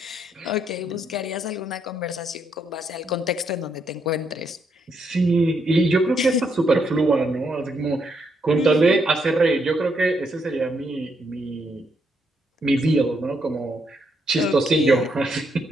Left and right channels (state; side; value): normal; both; correlation 0.76